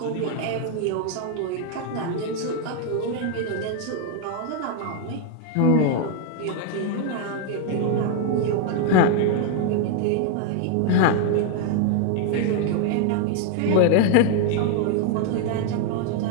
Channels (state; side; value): different; both; correlation 0.00